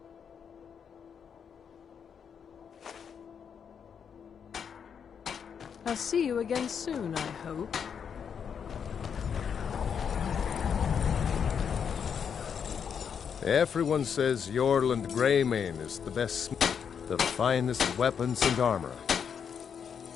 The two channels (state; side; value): quieter; right; 7.2 dB